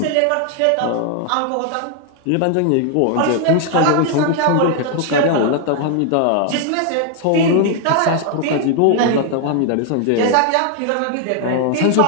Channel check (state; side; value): different; both; correlation 0.00